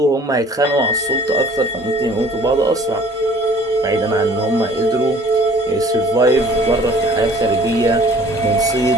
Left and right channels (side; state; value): both; normal; correlation 0.52